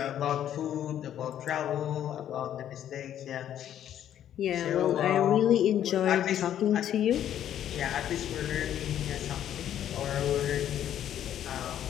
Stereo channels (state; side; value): quieter; right; 10.7 dB